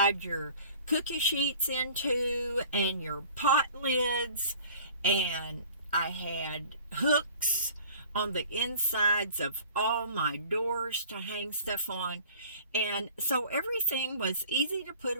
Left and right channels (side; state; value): both; inverted; correlation -0.47